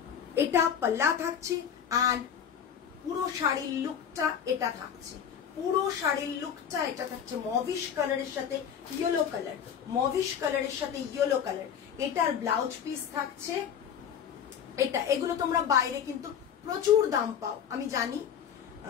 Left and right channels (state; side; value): quieter; right; 8.3 dB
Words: এটা পাল্লা থাকছে এন্ড পুরো শাড়ির লুকটা এটা থাকছে, পুরো শাড়ির লুকটা এটা থাকছে মভিশ কালারের সাথে ইয়েলো কালার, মভিশ কালারের সাথে ইয়েলো কালার। এটার ব্লাউজ পিস থাকছে এটা। এগুলো তোমরা বাইরে কিন্তু প্রচুর দাম পাও আমি জানি,